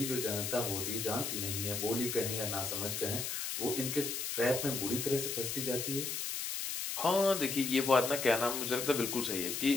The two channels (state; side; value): noise; left; hiss, 3 dB below the sound